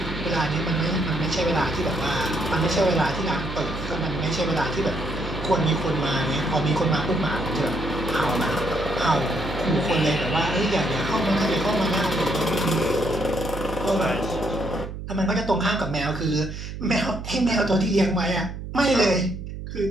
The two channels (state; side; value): noise; right; hum, 8 dB below the sound